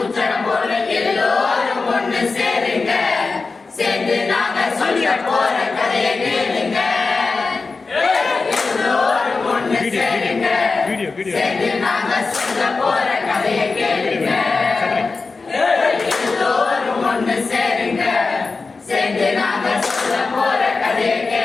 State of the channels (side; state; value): right; quieter; 4.2 dB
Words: போல எல்லோரும் ஒன்று சேருங்க. சேர்ந்து சேர்ந்து நாங்க சொல்ல போற கதையை கேளுங்க எல்லோரும் ஒண்ணு சேருங்க சேர்ந்து நாங்க சொல்ல போற கதையை